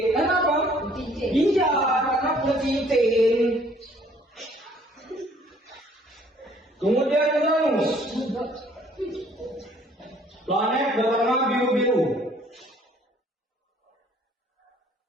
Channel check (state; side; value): normal; both; correlation 0.59